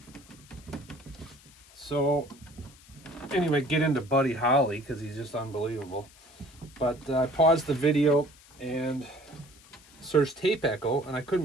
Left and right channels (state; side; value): noise; left; hiss, 24 dB below the sound